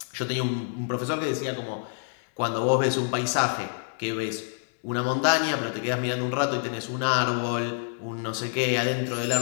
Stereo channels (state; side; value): silent; right; digital silence